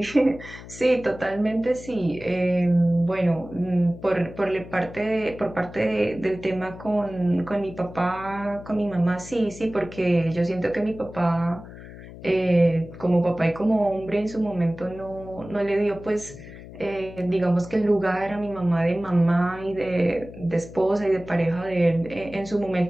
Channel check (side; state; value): left; noise; hum, 15 dB below the sound